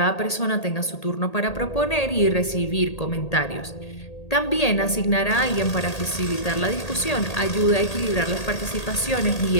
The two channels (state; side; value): late; right; 1.8 ms